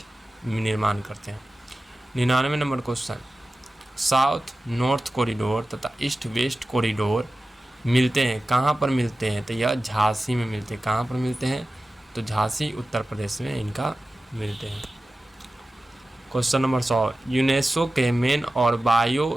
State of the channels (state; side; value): normal; both; correlation 0.95